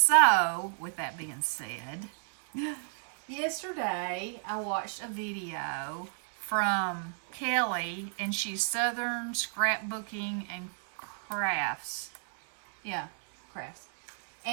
with that being said, yesterday I watched a video from Kelley, and she's Southern Scrapbooking and Crafts. Yeah, crafts.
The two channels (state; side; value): silent; left; digital silence